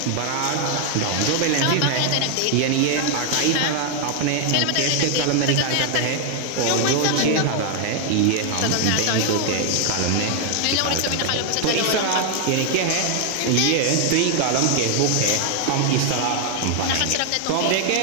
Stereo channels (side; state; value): both; different; correlation 0.00